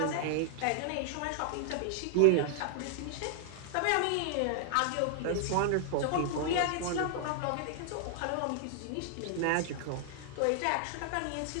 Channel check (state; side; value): different; both; correlation 0.00